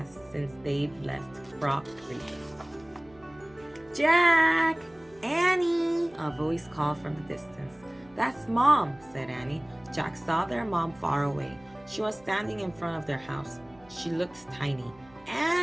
since they'd left Frog Creek. "Jack! Annie!" a voice called from the distance. "That's Mom," said Annie. Jack saw their mom far away. She was standing in front of their house. She looked tiny.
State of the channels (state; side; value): noise; right; hum, 27 dB below the sound